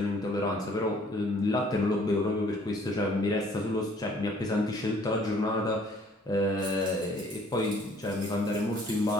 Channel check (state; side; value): normal; both; correlation 0.58